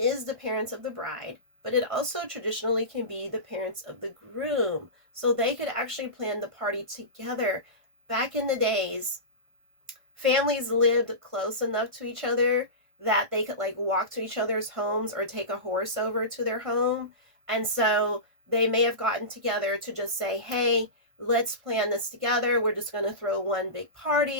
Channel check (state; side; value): late; left; 1.5 ms